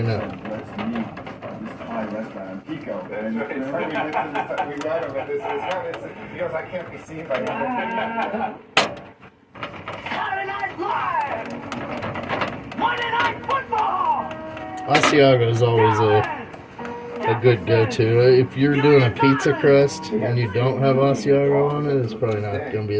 Asiago is always a good go-to. If you're doing a pizza crust and you don't have Asiago on it, it's probably not going to be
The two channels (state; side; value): identical; both; correlation 1.00